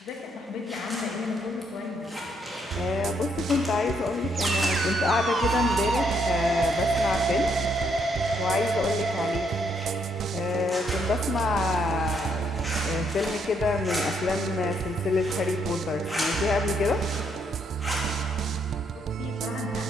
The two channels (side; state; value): both; normal; correlation 0.73